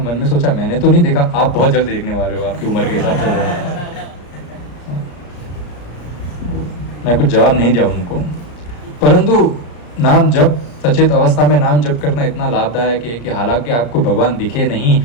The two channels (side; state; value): right; late; 34 ms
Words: मन में सोचा मैंने तो नहीं देखा, आप बहुत जल्द देखने वाले हो, आपकी उम्र के हिसाब से। मैं कुछ जवाब नहीं दिया उनको, परंतु नाम जप, सचेत अवस्था में नाम जप करना इतना लाभदायक है कि हालांकि आपको भगवान दिखे नहीं,